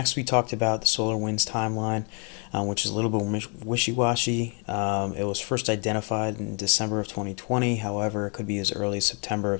we talked about the SolarWinds timeline, which is a little bit wishy-washy. It was first identified in December of 2020. However, it could be as early as September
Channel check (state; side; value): quieter; right; 37.1 dB